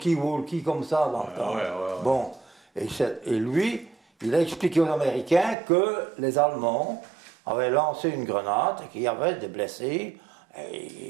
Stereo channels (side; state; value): left; drops out; at 5.6 s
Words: comme ça dans le temps. Ouais. Bon, et lui, il a expliqué aux Américains que les Allemands avaient lancé une grenade et qu'il y avait des blessés.